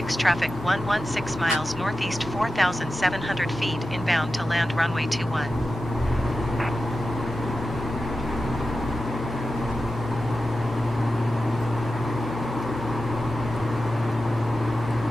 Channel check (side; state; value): both; normal; correlation 0.93